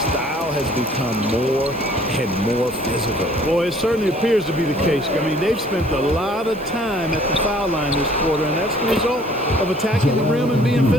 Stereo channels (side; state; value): right; noise; hiss, 24 dB below the sound